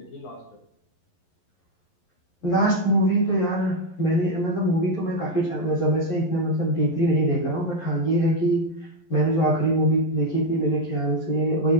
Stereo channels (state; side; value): late; right; 11 ms